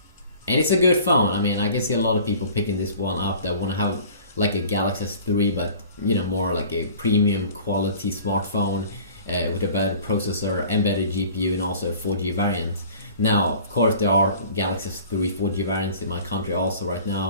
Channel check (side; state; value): both; inverted; correlation -0.46